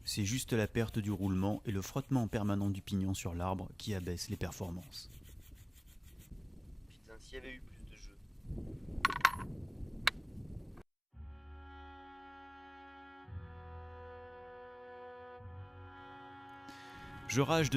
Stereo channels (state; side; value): identical; both; correlation 1.00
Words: C'est juste la perte du roulement et le frottement permanent du pignon sur l'arbre qui abaisse les performances. Putain, s'il y avait eu plus de jeux. Je rage